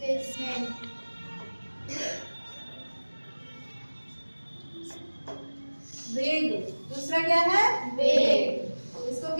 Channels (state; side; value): inverted; both; correlation -1.00